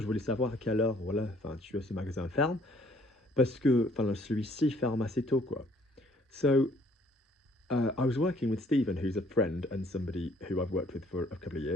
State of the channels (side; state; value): both; normal; correlation 0.61